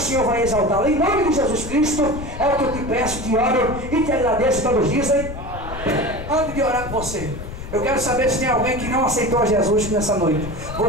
Senhor vai exaltá-lo. Em nome de Jesus Cristo, é o que eu te peço, te oro e te agradeço. Todos dizem. Antes de orar com você, eu quero saber se tem alguém que não aceitou a Jesus nessa noite.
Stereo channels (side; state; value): left; noise; rumble, 10 dB below the sound